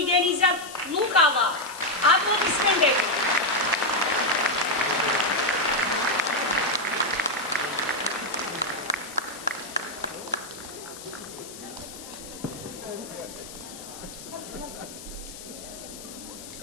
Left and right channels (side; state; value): left; noise; hiss, 14 dB below the sound